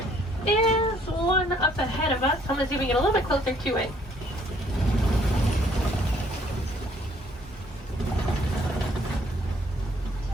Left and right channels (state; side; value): normal; both; correlation 0.63